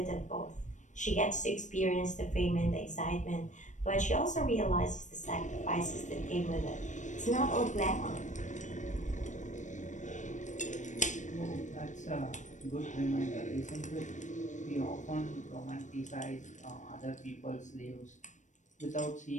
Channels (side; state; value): right; late; 0.35 ms